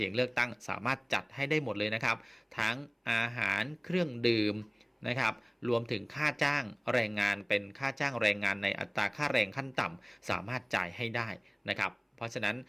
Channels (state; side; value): identical; both; correlation 1.00